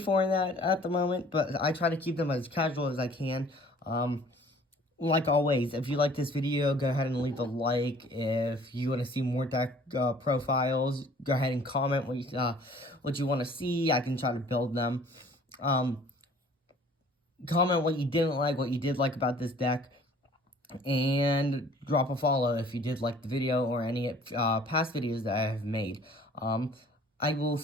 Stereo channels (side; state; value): both; normal; correlation 0.52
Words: in that at the moment, but I try to keep them as casual as I can. Like always, if you like this video, go ahead and leave a like. If you want to see more deck profiles, go ahead and comment what you want to see. I can try to build them. Comment what you didn't like, what you did like about this deck, and drop a follow if you did like the video or any past videos that I have made. I will